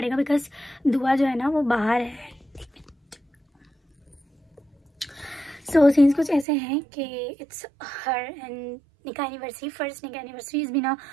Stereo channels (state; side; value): drops out; left; at 6.5 s